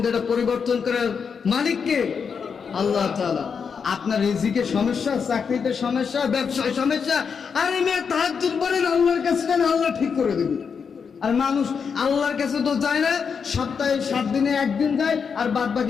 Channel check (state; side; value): quieter; right; 6.2 dB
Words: এটা পরিবর্তন করার মালিক কে? আল্লাহ তাআলা। আপনার রিজিকে সমস্যা, চাকরিতে সমস্যা, ব্যবসায় সমস্যা, আরে মেয়ে তাহাজ্জুদ পড়েন, আল্লাহর কাছে যান, আল্লাহ ঠিক করে দেবে। আর মানুষ আল্লাহর কাছে তো যায় না, সপ্তাহে 7 দিনে একদিন যায় আর বাদ